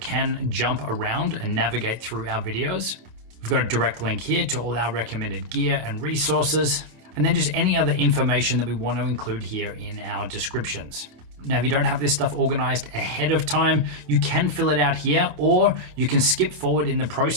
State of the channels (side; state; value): left; late; 27 ms